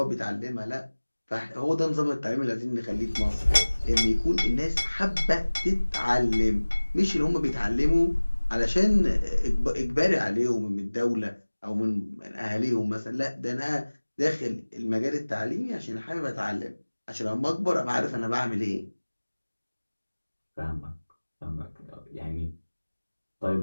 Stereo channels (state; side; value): inverted; both; correlation -1.00